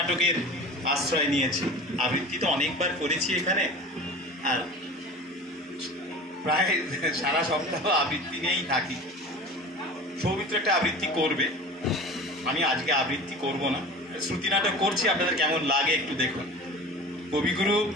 আশ্রয় নিয়েছি। আবৃত্তি তো অনেকবার করেছি এখানে, আর প্রায় সারা সপ্তাহ আবৃত্তি নিয়েই থাকি। সৌমিত্র একটা আবৃত্তি করবে, আমি আজকে আবৃত্তি করব না, শ্রুতি নাটক করছি। আপনাদের কেমন লাগে একটু দেখুন। কবিগুরু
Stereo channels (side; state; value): both; normal; correlation 0.37